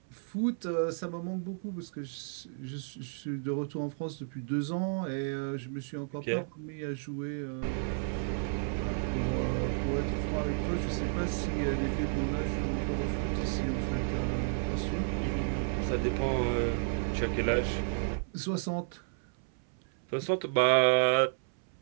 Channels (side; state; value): left; silent; 56 dB below the other